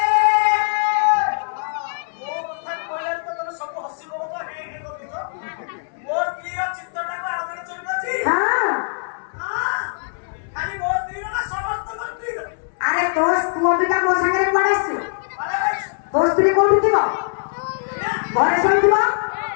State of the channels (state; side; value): silent; right; 65 dB below the other